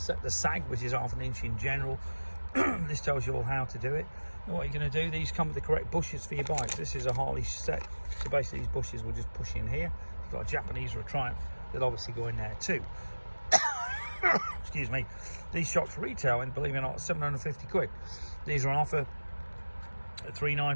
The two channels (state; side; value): inverted; both; correlation -1.00